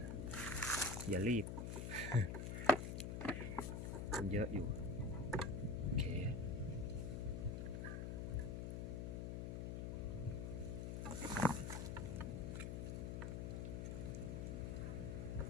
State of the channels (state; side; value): noise; left; hum, 3 dB below the sound